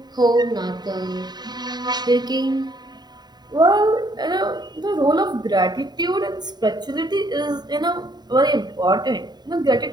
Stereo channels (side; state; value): left; late; 0.20 ms